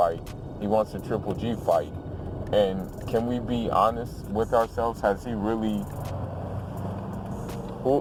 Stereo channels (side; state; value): both; identical; correlation 1.00